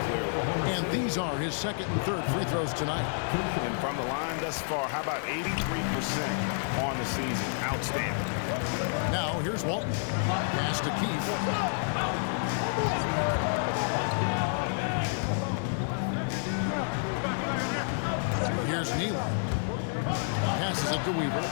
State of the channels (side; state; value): right; silent; 58 dB below the other